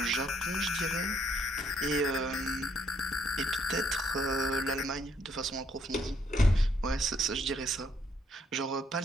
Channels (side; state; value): both; normal; correlation 0.69